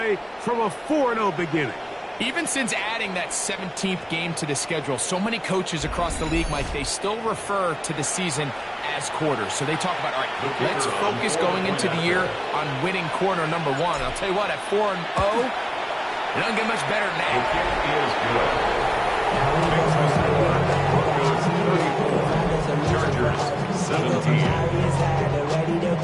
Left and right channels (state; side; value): identical; both; correlation 1.00